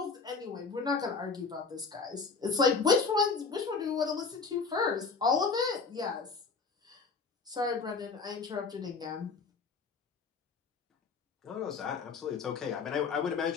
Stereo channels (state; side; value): quieter; right; 4.7 dB